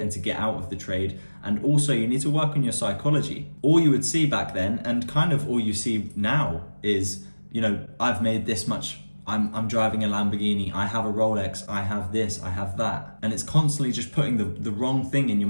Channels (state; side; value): inverted; both; correlation -1.00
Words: to get out of the trade. And also you need to work on your psychology. All you would see back then, and kind of all you see now, is, I've made this much, I'm driving a Lamborghini, I have a Rolex, I have this, I have that. And it's constantly just putting the wrong thing in your